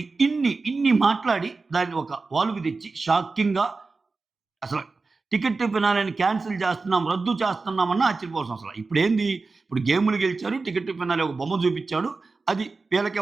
ఇన్ని మాట్లాడి దాన్ని ఒక వాల్వ్‌కి తెచ్చి షాకింగ్‌గా అసలు టికెట్ ఫినాలేని క్యాన్సిల్ చేస్తున్నాం, రద్దు చేస్తున్నామన్నా ఆశ్చర్యపోవాల్సిన అవసరం. ఇప్పుడు గేములు గెలిచారు. టికెట్ ఫినాలే ఒక బొమ్మ చూపిచ్చాడు. అది వీళ్ళకే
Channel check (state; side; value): quieter; left; 4.0 dB